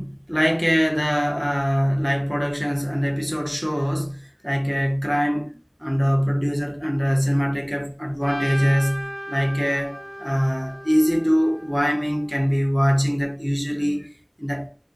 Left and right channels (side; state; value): both; identical; correlation 1.00